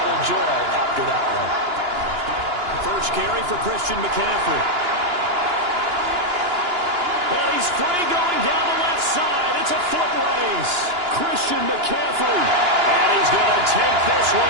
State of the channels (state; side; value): late; left; 2.9 ms